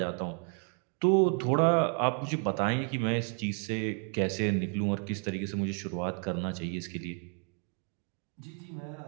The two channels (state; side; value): quieter; left; 39.0 dB